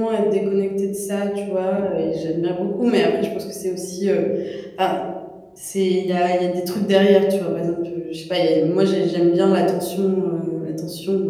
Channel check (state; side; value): identical; both; correlation 1.00